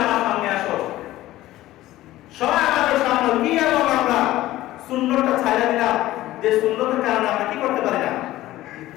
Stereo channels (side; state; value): right; quieter; 15.8 dB